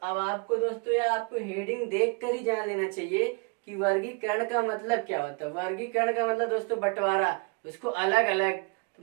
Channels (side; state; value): left; quieter; 33.8 dB